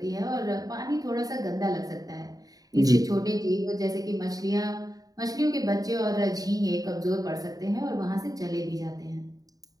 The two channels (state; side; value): late; left; 0.18 ms